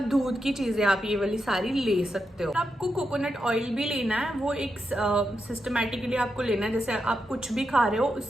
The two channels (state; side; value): normal; both; correlation 0.86